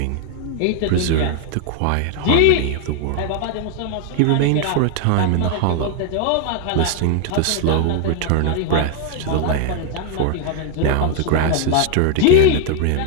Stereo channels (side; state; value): both; different; correlation 0.00